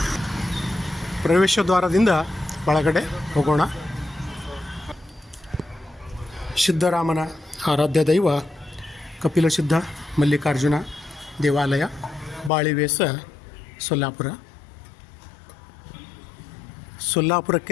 ಪ್ರವೇಶ ದ್ವಾರದಿಂದ ಒಳಗಡೆ ಹೋಗೋಣ. ಸಿದ್ಧರಾಮನ ಆರಾಧ್ಯ ದೈವ ಕಪಿಲಸಿದ್ಧ ಮಲ್ಲಿಕಾರ್ಜುನ ದೇವಾಲಯ, ಬಾಳಿವೇಸ, ಸೊಲ್ಲಾಪುರ.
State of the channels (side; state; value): right; drops out; at 12.5 s